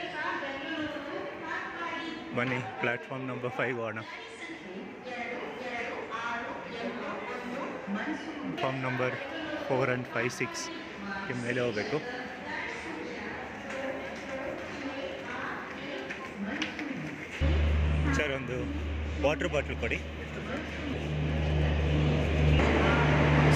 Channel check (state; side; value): identical; both; correlation 1.00